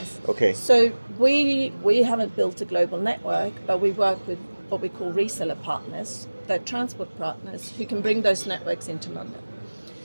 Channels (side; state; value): both; inverted; correlation -1.00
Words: Okay. So we haven't built a global network, but we work with what we call reseller partners, they're transport partners who can bring those networks into London.